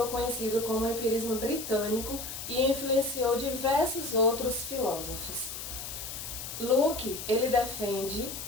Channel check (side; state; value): left; noise; hiss, 8 dB below the sound